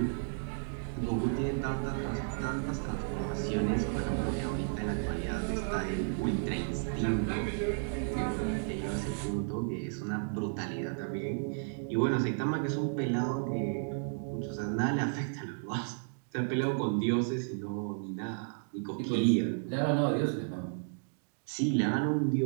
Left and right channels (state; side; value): silent; left; digital silence